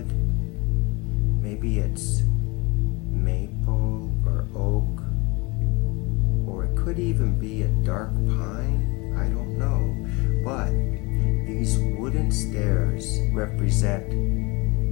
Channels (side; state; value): right; quieter; 25.9 dB